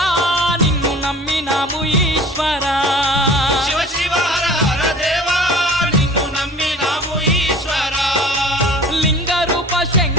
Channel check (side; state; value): both; normal; correlation 0.45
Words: నిన్ను నమ్మినాము ఈశ్వరా శివ శివ హర హర దేవా నిన్ను నమ్మినాము ఈశ్వరా లింగ రూప